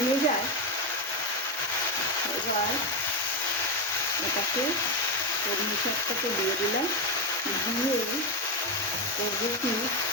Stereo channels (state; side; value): normal; both; correlation 0.10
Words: যায়। এবার এটাকে কলমি শাকটাকে দিয়ে দিলাম। দিয়ে করবো কি,